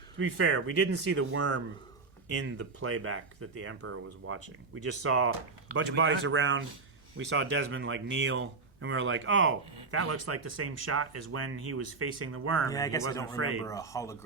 be fair, we didn't see the worm in the playback that the Emperor was watching. We just saw a bunch of bodies around. We saw Desmond like kneel, and we were like, "Oh, that looks like the same shot as when he was facing the worm." Yeah, and I guess he wasn't I don't afraid. remember a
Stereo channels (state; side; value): quieter; left; 4.2 dB